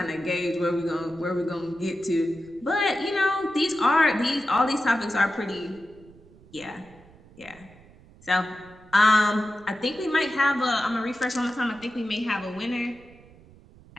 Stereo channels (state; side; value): noise; right; rumble, 24 dB below the sound